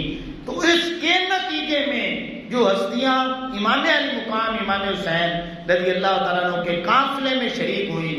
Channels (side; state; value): both; identical; correlation 1.00